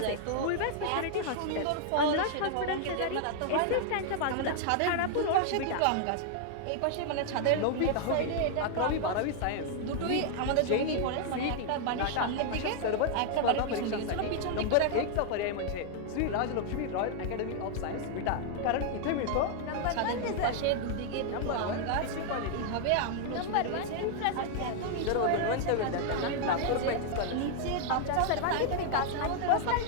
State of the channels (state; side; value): different; both; correlation 0.00